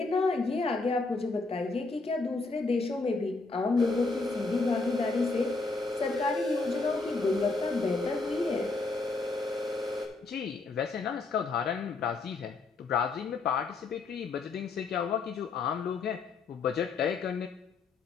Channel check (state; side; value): quieter; right; 3.8 dB